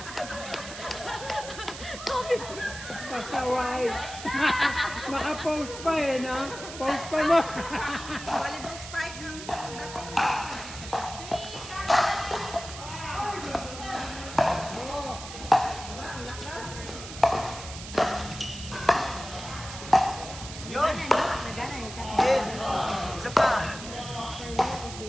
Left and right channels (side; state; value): right; noise; hiss, 11 dB below the sound